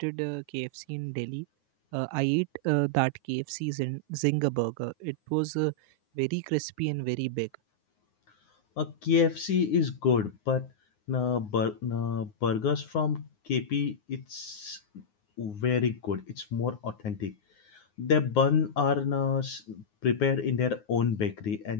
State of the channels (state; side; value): late; right; 9.6 ms